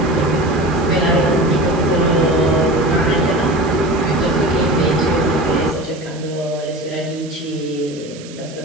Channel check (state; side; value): noise; right; hiss, 19 dB below the sound